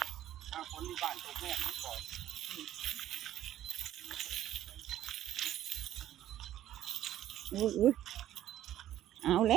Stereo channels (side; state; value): left; quieter; 12.5 dB